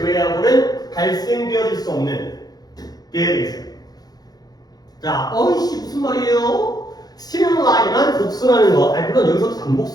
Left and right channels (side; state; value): right; late; 0.19 ms